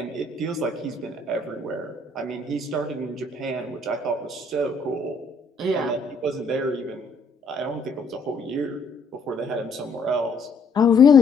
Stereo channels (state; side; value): quieter; right; 3.3 dB